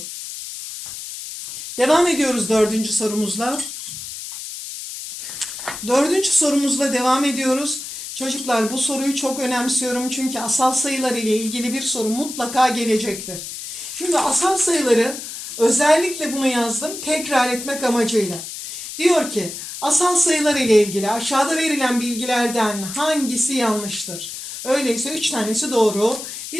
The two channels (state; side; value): noise; left; hiss, 9 dB below the sound